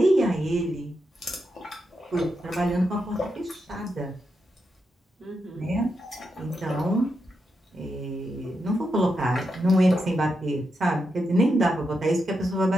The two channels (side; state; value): both; normal; correlation 0.85